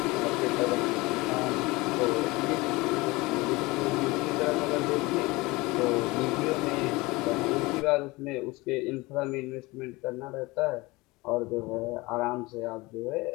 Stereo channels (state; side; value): quieter; right; 22.6 dB